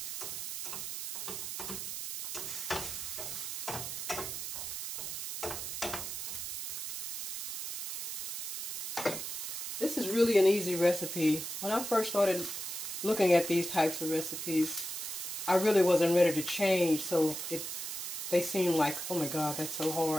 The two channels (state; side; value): noise; right; hiss, 5 dB below the sound